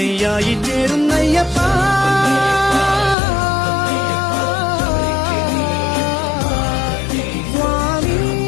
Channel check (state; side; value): drops out; right; at 3.2 s